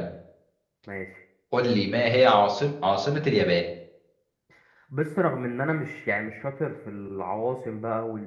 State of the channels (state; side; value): identical; both; correlation 1.00